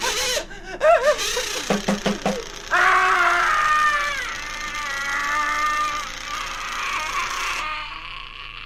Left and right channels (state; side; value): identical; both; correlation 1.00